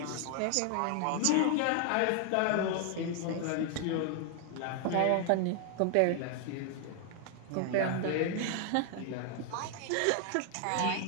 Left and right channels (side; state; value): both; different; correlation 0.00